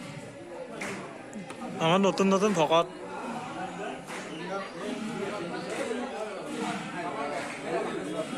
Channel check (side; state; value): both; identical; correlation 1.00